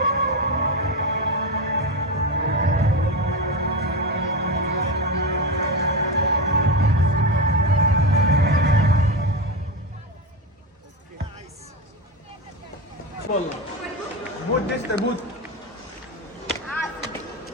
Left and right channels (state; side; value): normal; both; correlation 0.16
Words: भूत दिसतंय भूत.